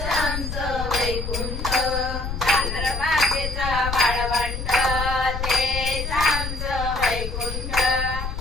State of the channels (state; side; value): noise; left; rumble, 5 dB below the sound